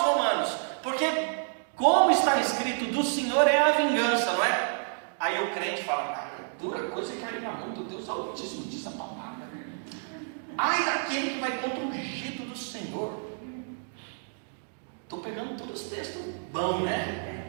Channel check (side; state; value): left; silent; digital silence